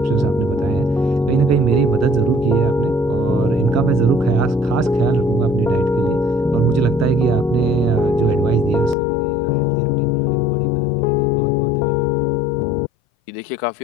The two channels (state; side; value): drops out; right; at 9.0 s